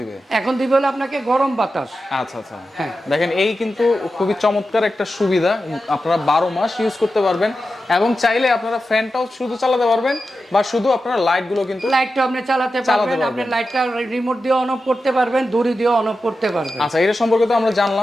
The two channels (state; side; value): normal; both; correlation 0.91